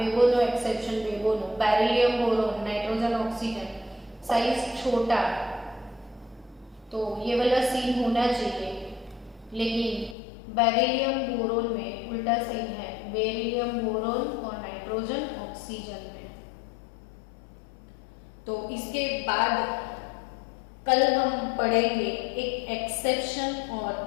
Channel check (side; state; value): right; drops out; at 10.2 s